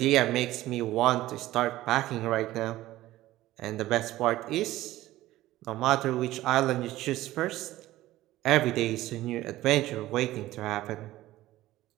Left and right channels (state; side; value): quieter; left; 15.9 dB